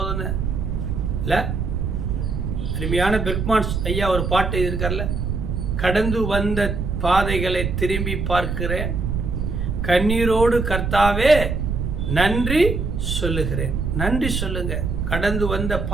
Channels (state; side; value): noise; right; rumble, 2 dB below the sound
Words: இல்லை. அருமையான பெர்க்மான்ஸ் ஐயா ஒரு பாட்டு இருக்கார்ல, கடந்து வந்த பாதைகளை திரும்பி பார்க்கிறேன், கண்ணீரோடு கர்த்தாவே நன்றி சொல்லுகிறேன். நன்றி சொல்லுங்க. கடந்து வந்த